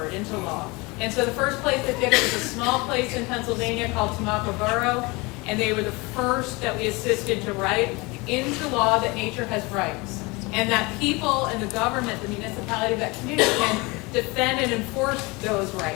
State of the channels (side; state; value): right; quieter; 25.3 dB